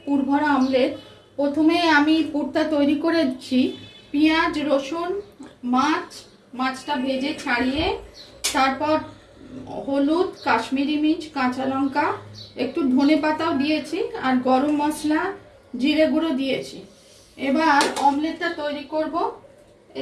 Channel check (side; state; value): both; identical; correlation 1.00